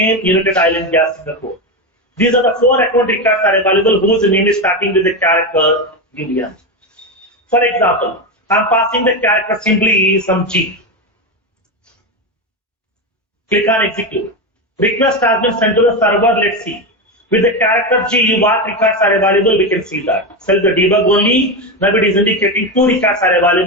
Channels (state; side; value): normal; both; correlation 0.14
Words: United Island Gas Singapore. These are the 4 account records are available whose name is starting with the character UN. For example, I'm passing the character simply some G. Click on execute. Request has been sent to the server. Let's see. With the character G, what records are available, we can see that. Select the debug only. Now it is indicating 2 records are